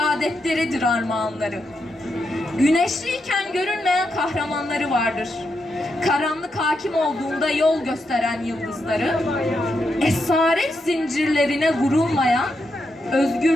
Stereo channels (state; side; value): normal; both; correlation 0.83